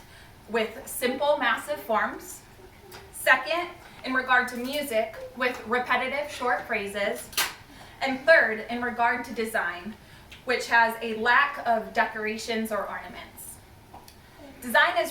with simple, massive forms. Second, in regard to music, with repetitive, short phrases. And third, in regard to design, which has a lack of decorations or ornaments. Design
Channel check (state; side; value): identical; both; correlation 1.00